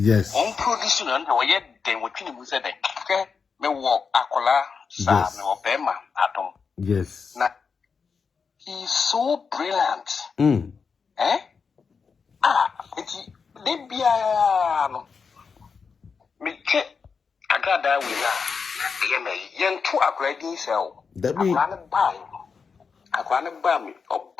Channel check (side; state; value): right; quieter; 5.5 dB